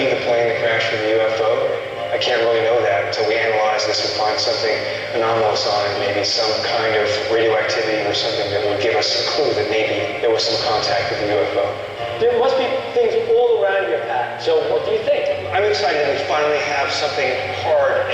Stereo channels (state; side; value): identical; both; correlation 1.00